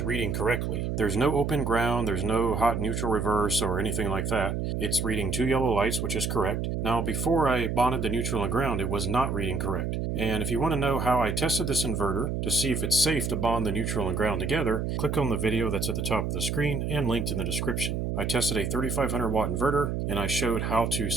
reading correctly. There's no open ground, there's no hot neutral reverse or anything like that. It's reading 2 yellow lights, which is correct. Now, before I bonded the neutral and ground, it was not reading correct. And if you want to know how I tested this inverter to see if it's safe to bond the neutral and ground together, click on the video that's at the top of the screen and linked in the description. I tested a 3500 watt inverter, and I showed how to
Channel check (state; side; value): noise; right; hum, 1 dB below the sound